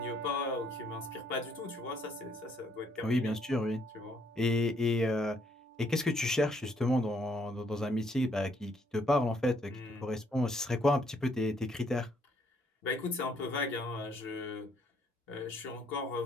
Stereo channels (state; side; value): normal; both; correlation 0.68